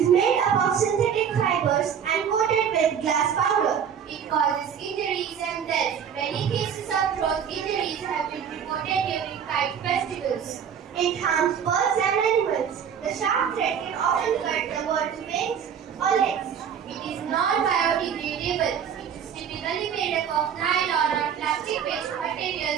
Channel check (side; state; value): left; quieter; 7.9 dB